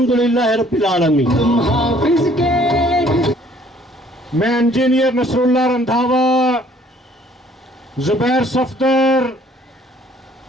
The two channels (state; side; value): normal; both; correlation 0.59